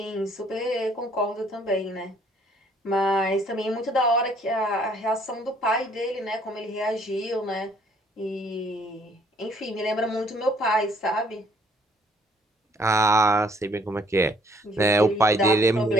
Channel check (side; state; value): both; normal; correlation 0.63